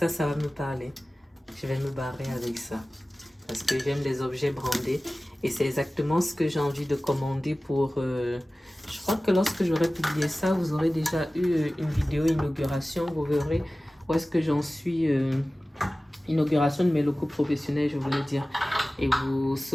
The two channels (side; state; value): both; normal; correlation 0.97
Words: va me parler. Je vais me barrer avec ça parce que j'aime les objets brandés et c'est exactement ce que j'ai envie de commander pour... je crois que lorsque j'aurai publié ça, vous aurez déjà eu une vidéo inauguration, vous verrez où est-ce que j'en suis, inauguration de mes locaux professionnels, je voulais dire. Et vous